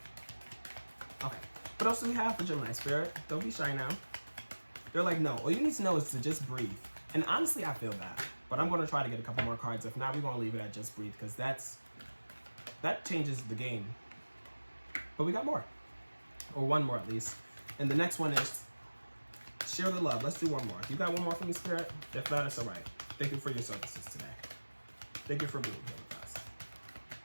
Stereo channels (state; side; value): inverted; both; correlation -1.00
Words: Okay. What else do we have for Gemini Spirit? Don't be shy now. They're like, no. All you need to know is to just breathe. And honestly, I feel that. But I'm going to try to get a couple more cards. If not, we're going to leave it at just breathe because that changes the game. But we got more. Or one more at least. And the next one is share the love. Let's do one more. You got one more for me, Spirit? If not, it's all right. Thank you for your services today. Thank you for being here with us.